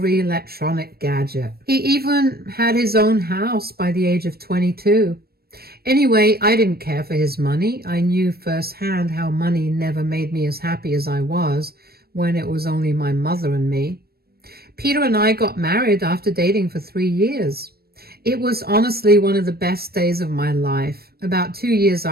electronic gadget. He even had his own house by the age of 22. Anyway, I didn't care for his money. I knew firsthand how money never made me as happy as I was when it was only my mother and me. Peter and I got married after dating for 3 years. It was honestly one of the best days of my life. About 2 years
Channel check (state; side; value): late; left; 0.45 ms